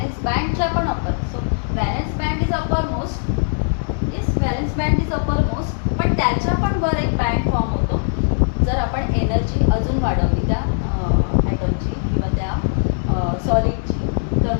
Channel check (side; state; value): right; silent; digital silence